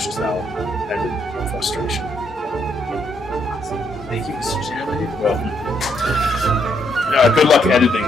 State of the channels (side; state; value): both; normal; correlation 0.74